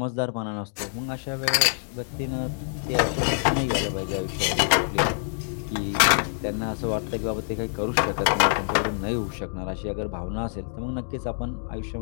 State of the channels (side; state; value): right; silent; digital silence